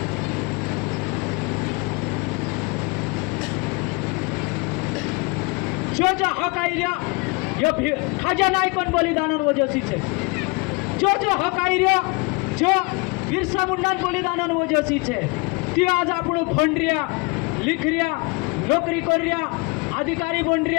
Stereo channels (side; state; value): right; quieter; 28.8 dB